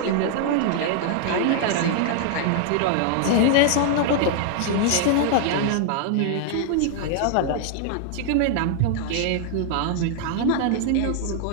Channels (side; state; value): both; different; correlation 0.00